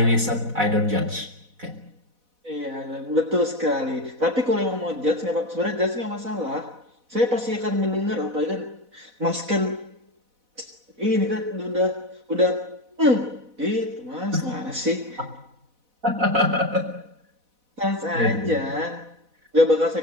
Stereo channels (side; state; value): left; late; 4.1 ms